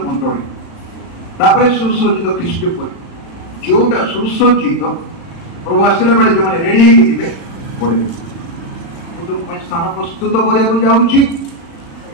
ମଣ୍ଡଳୀ, ତାପରେ ସୁସଜ୍ଜିତ ଖ୍ରୀଷ୍ଟ ପରିବାର। ଯୋଉଟା ସୁସଜ୍ଜିତ ପ୍ରଭୁ ଆସିଲା ବେଳେ ଯୋଉମାନେ ରେଡି ହେଇକି ଥିବେ ପଢିବେ। ମୁଁ ତୁମ ପାଇଁ ସ୍ଥାନ ପ୍ରସ୍ତୁତ କରିବାକୁ ଯାଉଛି,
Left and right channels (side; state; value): right; late; 36 ms